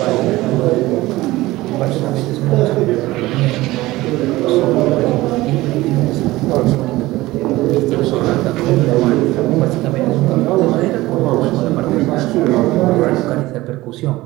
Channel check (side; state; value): left; quieter; 18.5 dB